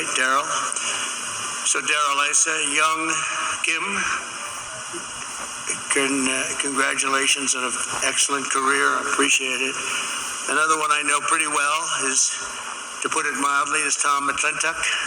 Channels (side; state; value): both; identical; correlation 1.00